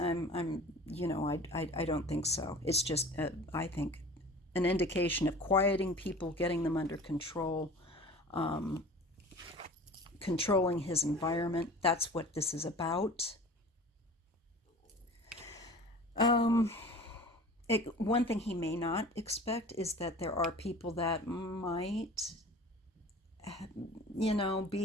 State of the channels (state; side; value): normal; both; correlation 0.42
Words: don't think so. It's just, I think, an indication of quieting people, getting them under control, controlling his environment. That's what this is about. One thing he may not expect is that there are people that might,